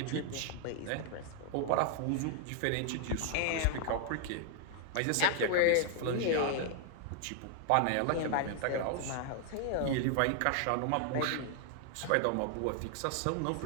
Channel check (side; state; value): both; different; correlation 0.00